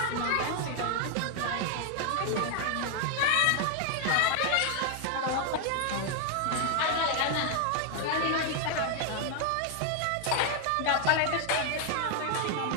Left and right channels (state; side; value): different; both; correlation 0.00